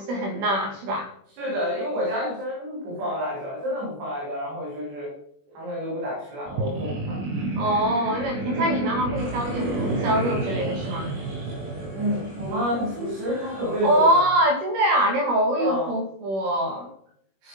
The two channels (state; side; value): late; left; 21 ms